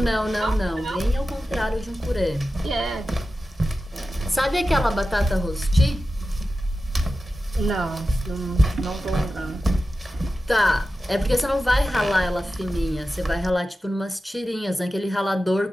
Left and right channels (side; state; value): both; normal; correlation 0.93